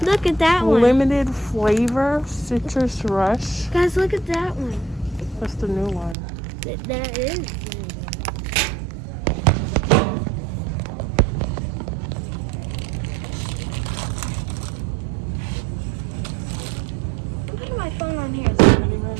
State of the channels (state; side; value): drops out; left; at 6.2 s